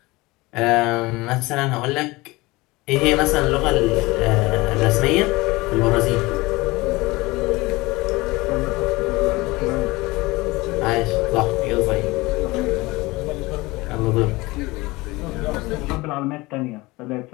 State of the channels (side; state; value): right; quieter; 22.0 dB